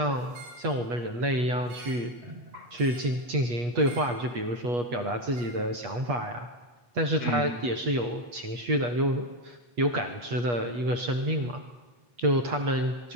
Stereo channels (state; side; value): late; left; 8.3 ms